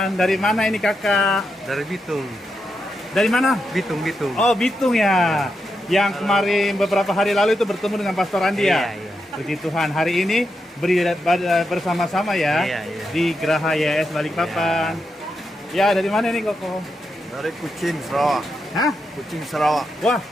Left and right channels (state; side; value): normal; both; correlation 0.85